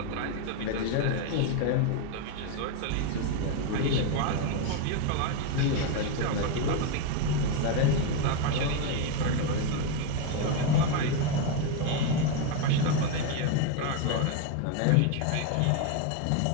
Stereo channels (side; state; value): both; different; correlation 0.02